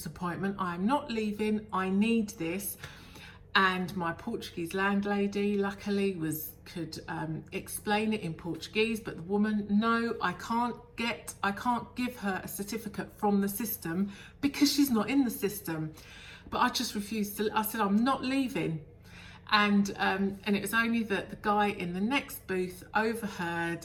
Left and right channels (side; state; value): both; identical; correlation 1.00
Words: appointment. I'm not leaving. I need this. And my Portuguese landlady, luckily, could explain it in Portuguese. But the woman, no, I can't give her a certificate from the system because she's not in the system. But I just refused to. I said, I'm not leaving. And it was only that the guy in the next booth